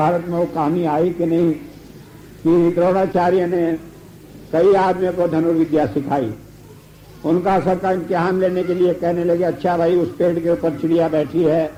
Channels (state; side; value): identical; both; correlation 1.00